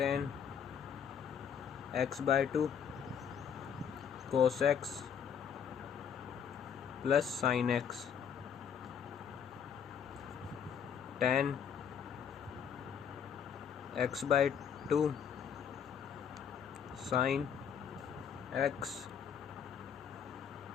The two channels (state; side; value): quieter; right; 7.8 dB